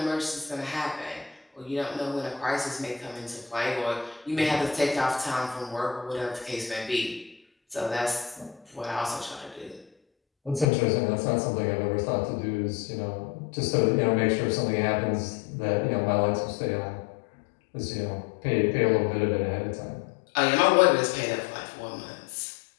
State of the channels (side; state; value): right; drops out; at 10.7 s